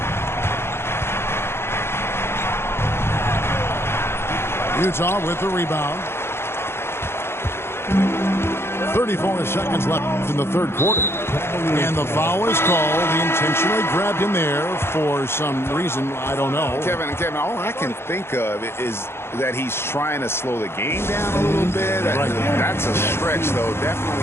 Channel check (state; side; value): late; right; 0.12 ms